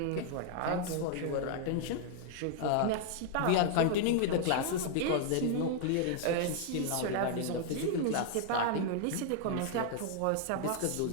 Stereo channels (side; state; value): both; different; correlation 0.00